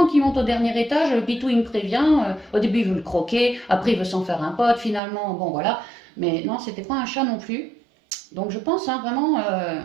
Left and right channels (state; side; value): drops out; left; at 5.0 s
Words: qu'ils montent au dernier étage, le Pitou, il me prévient. Au début, il veut le croquer, après, il veut s'en faire un pote, finalement, bon, voilà. Mais non, c'était pas un chat non plus. Donc je pense vraiment